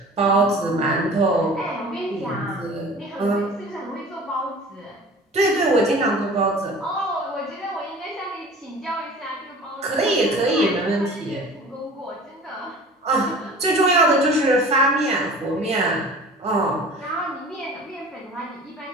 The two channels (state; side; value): normal; both; correlation 0.42